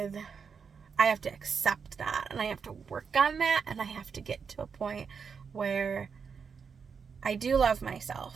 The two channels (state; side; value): quieter; left; 6.0 dB